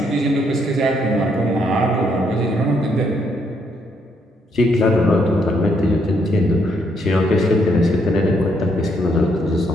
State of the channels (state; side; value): normal; both; correlation 0.73